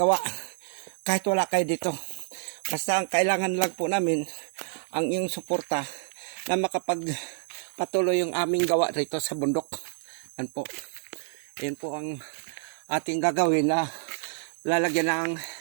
kahit wala kayo dito. Basta ang kailangan lang po namin ang iyong suporta na makapagpatuloy yung aming gawa rito sa bundok. Yan po. Yan po ang ating gagawin na lalagyan ng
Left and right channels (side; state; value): left; silent; 59 dB below the other